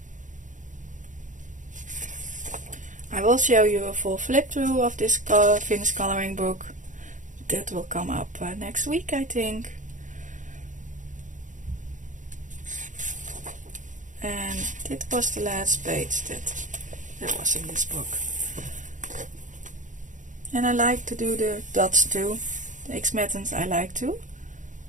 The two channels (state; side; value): late; left; 0.37 ms